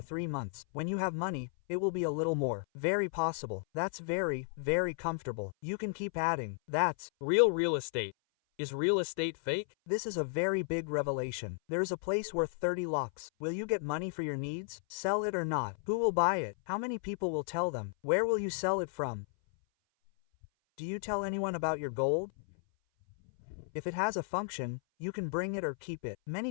3 months. When you have money, it will be a little more. Very possible. That's very comfortable. You can keep adding. That's real estate. Is real estate fake? This is a very big revelation. There is a place worth 30 lakhs. Will you get money for your needs? Sell it or not? Who will buy it? How many people will tell them? Where will you sell it from? Do you tell anyone about your gold? If it has a function, you can bring it or keep it. Many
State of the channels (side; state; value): right; silent; 55 dB below the other